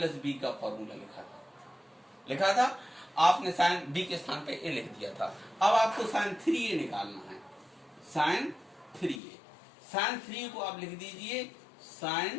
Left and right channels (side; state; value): right; drops out; at 9.2 s